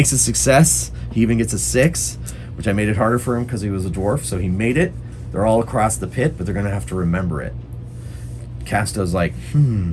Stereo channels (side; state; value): both; identical; correlation 1.00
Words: a success. He even gets a 6, which I made it harder for him because he was a dwarf, so he made it. They're all across the pit, but they're going to have to remember it. Casto's like,